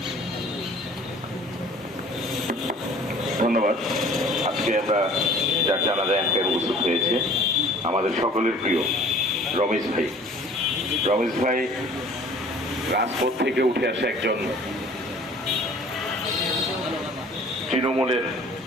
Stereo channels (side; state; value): both; normal; correlation 0.50